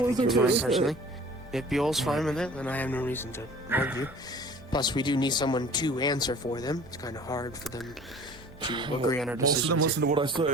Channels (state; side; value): normal; both; correlation 0.46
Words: if Buell's fine with it, then I have no reason to argue. Plus, we do need someone to answer for them. It's kind of hard for them to agree on our decisions. Most of them listen to what I